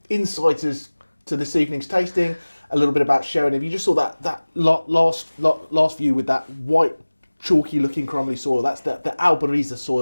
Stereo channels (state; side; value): inverted; both; correlation -1.00